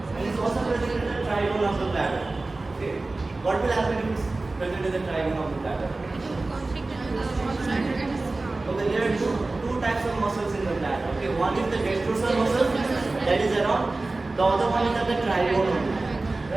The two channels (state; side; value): quieter; left; 3.2 dB